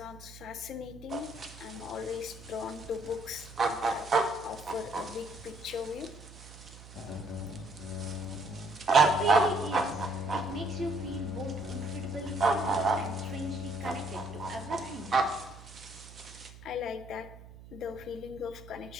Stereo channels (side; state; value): right; noise; hum, 17 dB below the sound